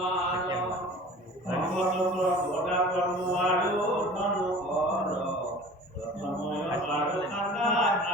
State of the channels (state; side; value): normal; both; correlation 0.42